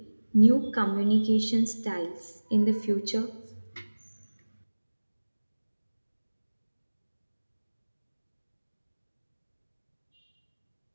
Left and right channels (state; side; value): inverted; both; correlation -1.00